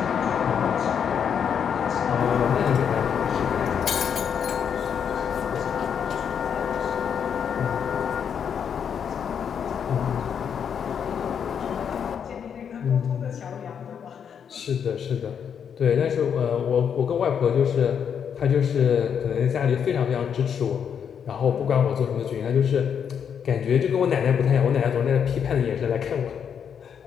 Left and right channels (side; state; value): right; quieter; 7.7 dB